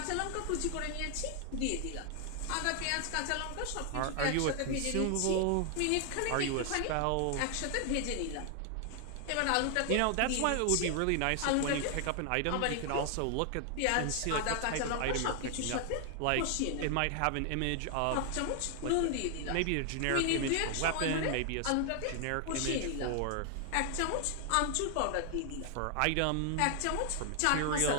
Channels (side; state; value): both; different; correlation 0.00